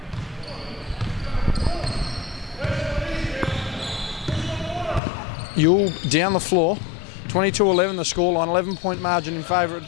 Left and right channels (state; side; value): drops out; right; at 5.0 s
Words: Yule down the floor, 22-11 the scoreline, 11-point margin in favour